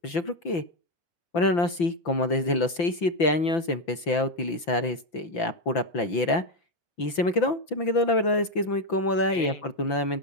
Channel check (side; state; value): right; late; 5.9 ms